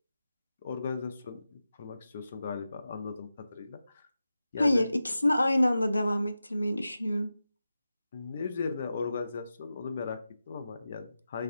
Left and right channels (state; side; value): inverted; both; correlation -0.92